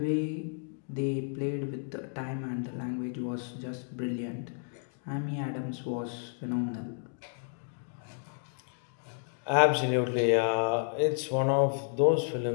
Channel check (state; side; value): silent; right; 57 dB below the other